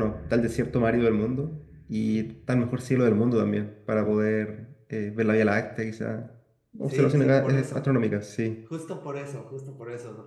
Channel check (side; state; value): both; identical; correlation 1.00